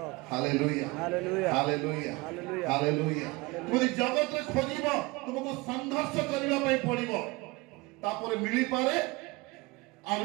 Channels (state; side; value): quieter; left; 23.6 dB